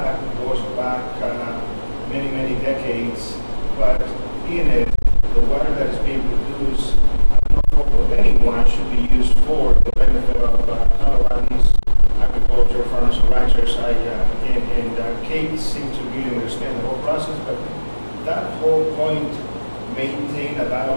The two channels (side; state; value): both; inverted; correlation -1.00